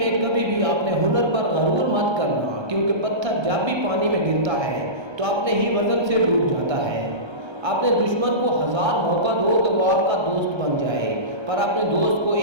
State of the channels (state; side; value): late; left; 1.3 ms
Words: کبھی بھی اپنے ہنر پر غرور مت کرنا، کیونکہ پتھر جب بھی پانی میں گرتا ہے تو اپنے ہی وزن سے ڈوب جاتا ہے۔ اپنے دشمن کو 1000 موقع دو کہ وہ آپ کا دوست بن جائے، پر اپنے دوست کو